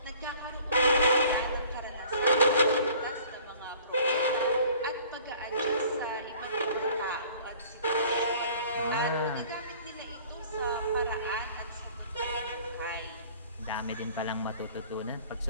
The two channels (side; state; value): both; inverted; correlation -0.52